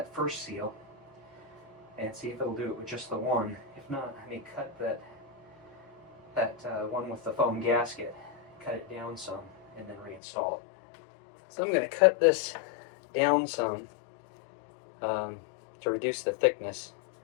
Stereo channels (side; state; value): right; drops out; at 10.2 s